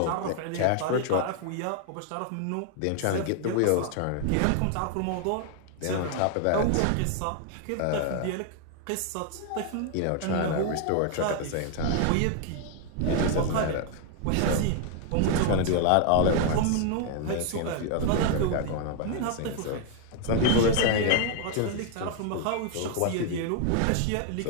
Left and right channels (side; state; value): both; different; correlation 0.00